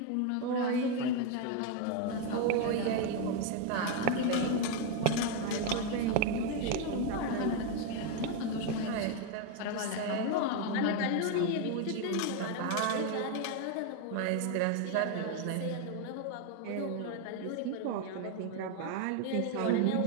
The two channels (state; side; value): different; both; correlation 0.01